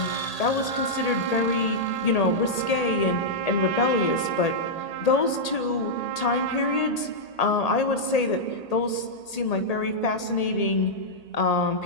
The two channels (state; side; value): late; right; 1.8 ms